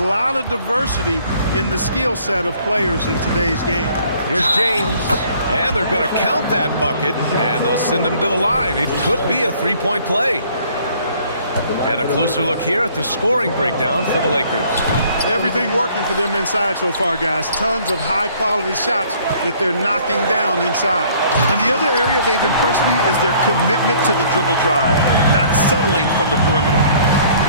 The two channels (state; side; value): inverted; both; correlation -0.58